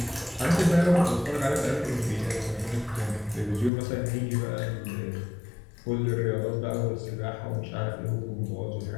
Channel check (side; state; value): right; drops out; at 3.7 s